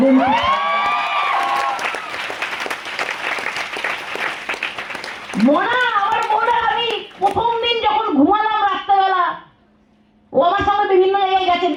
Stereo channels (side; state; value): both; identical; correlation 1.00